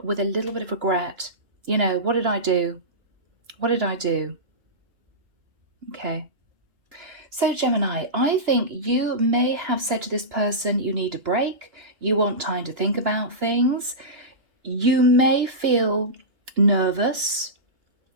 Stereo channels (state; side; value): late; left; 2.9 ms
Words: with a little bit of regret. You know, what did I do? What did I do? Okay. So Gemini, I think you may have said to this person, you need a break. You want time to think about things. You may feel nervous